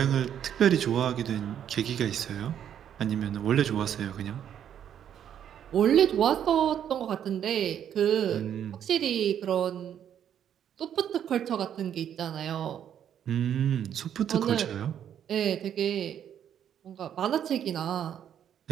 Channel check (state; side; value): quieter; left; 9.5 dB